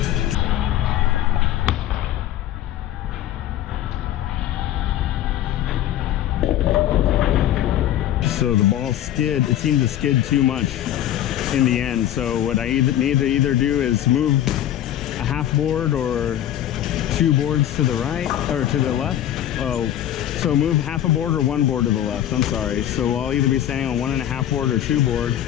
So the ball skid, it seemed to skid too much in the end. So what I need to either do is move a half board or 2 boards to the right or to the left. Oh, so move half a board or 1 board to the left. I'm sorry. So I'll either be standing on 1.5 board or 2 board.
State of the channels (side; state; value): right; quieter; 11.9 dB